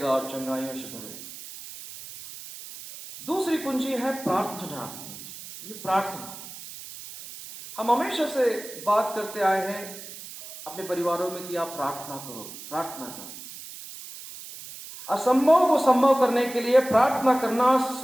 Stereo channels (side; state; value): right; noise; hiss, 13 dB below the sound